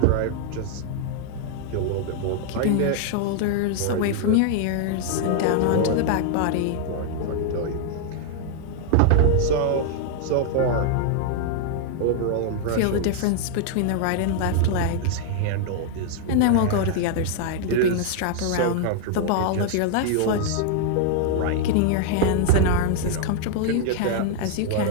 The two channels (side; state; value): both; different; correlation 0.00